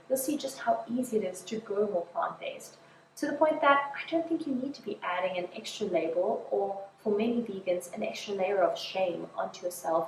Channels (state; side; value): identical; both; correlation 1.00